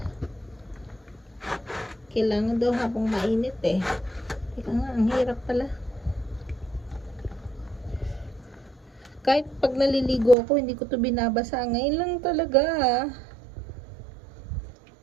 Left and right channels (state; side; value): drops out; left; at 10.4 s